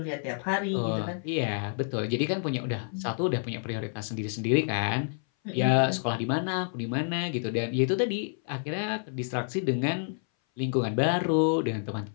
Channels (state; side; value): silent; right; 58 dB below the other